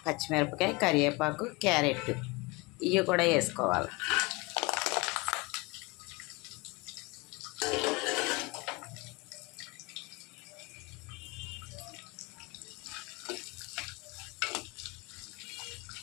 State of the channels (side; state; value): right; quieter; 25.2 dB